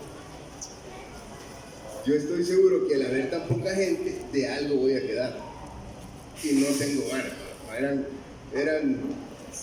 yo estoy seguro que al haber tan poca gente, de algo voy a quedar. Y no tengo ganas. Eran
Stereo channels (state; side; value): identical; both; correlation 1.00